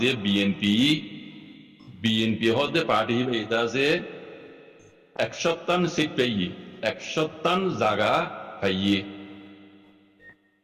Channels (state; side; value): identical; both; correlation 1.00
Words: বিএনপি হতে পার্টি এটা আছে 157 সিট পাইয়ে 157 জায়গা পাইয়ে